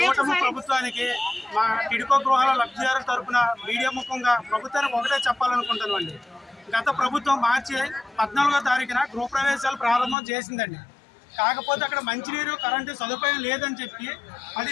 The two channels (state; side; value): drops out; right; at 10.2 s